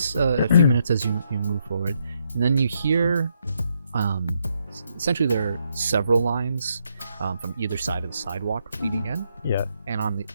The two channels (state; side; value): inverted; both; correlation -0.77